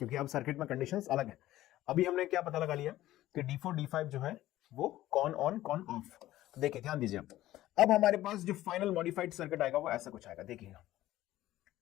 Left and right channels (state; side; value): quieter; right; 15.0 dB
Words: अब सर्किट में कंडीशंस अलग है। अभी हमने क्या पता लगा लिया कि D4 D5 जो है वो कौन ऑन कौन ऑफ। तो देखिए ध्यान दीजिए, अब हमारे पास जो फाइनल मॉडिफाइड सर्किट आएगा वो ऐसा कुछ आएगा। देखिएगा